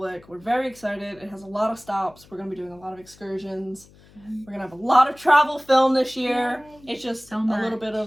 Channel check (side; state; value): left; noise; hum, 26 dB below the sound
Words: We're very excited. It has a lot of stops. We're going to be doing a lot of excursions. We're going to have a lot of travel film this year. Yay. It's just So a little much. bit